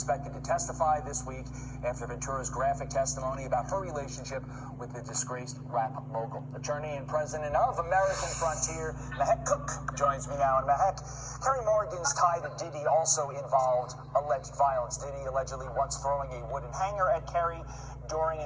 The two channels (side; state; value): both; identical; correlation 1.00